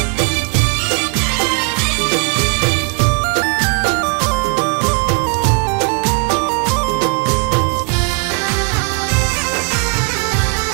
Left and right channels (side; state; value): left; quieter; 36.6 dB